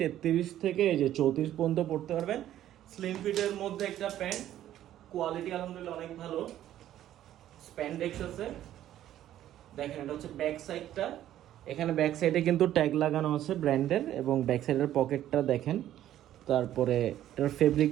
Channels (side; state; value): left; quieter; 12.3 dB